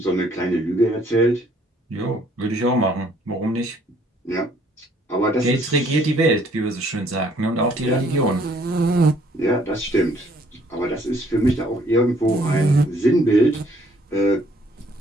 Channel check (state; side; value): normal; both; correlation 0.63